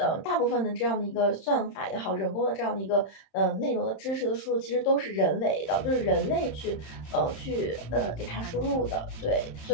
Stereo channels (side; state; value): right; late; 31 ms